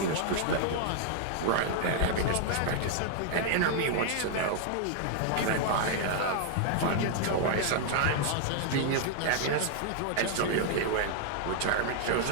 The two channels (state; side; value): different; both; correlation 0.00